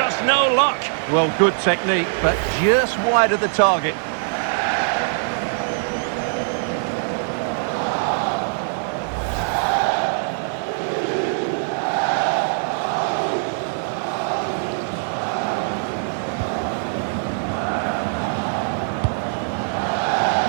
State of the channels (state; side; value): silent; left; digital silence